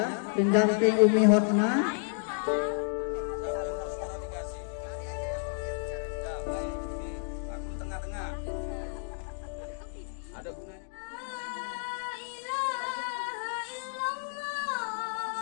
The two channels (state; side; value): silent; right; 57 dB below the other